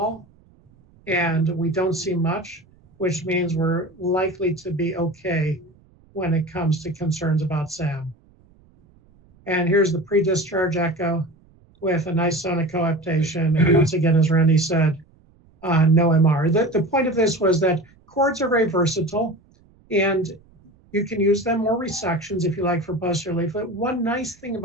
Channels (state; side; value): noise; right; rumble, 30 dB below the sound